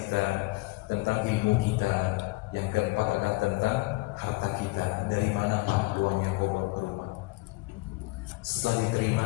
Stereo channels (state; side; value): quieter; right; 22.9 dB